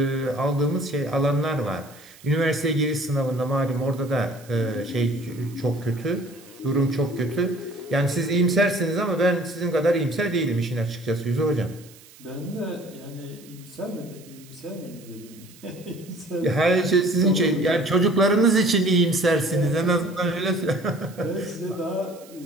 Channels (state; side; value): noise; right; hiss, 23 dB below the sound